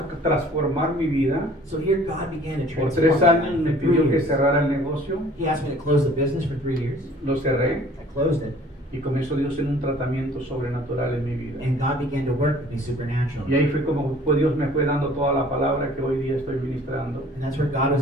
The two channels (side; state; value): both; normal; correlation 0.52